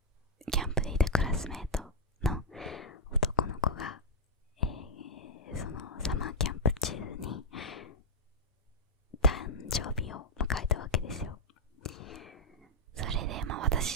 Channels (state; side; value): normal; both; correlation -0.04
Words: いたクラスメートの男の子が、そのサマーキャンプ中に誕生日を迎えたわけですよ。それで